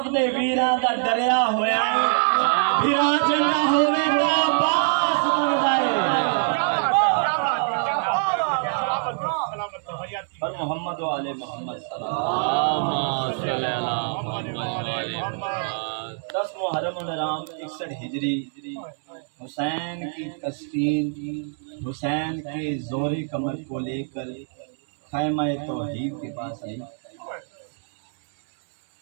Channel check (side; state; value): left; silent; digital silence